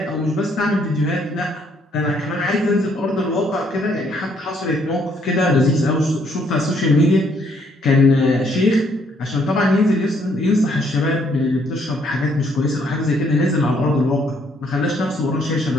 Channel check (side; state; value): both; normal; correlation 0.68